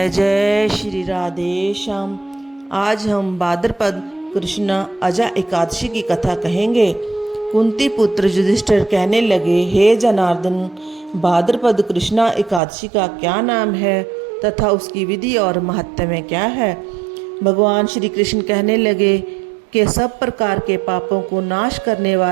जय श्री राधे श्याम। आज हम भाद्रपद कृष्ण अजा एकादशी की कथा कहेंगे। कुंती पुत्र युधिष्ठिर कहने लगे, हे जनार्दन, भाद्रपद कृष्णा एकादशी का क्या नाम है तथा उसकी विधि और महत्व क्या है। भगवान श्री कृष्ण कहने लगे कि सब प्रकार के पापों को नाश करने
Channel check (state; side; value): drops out; left; at 12.6 s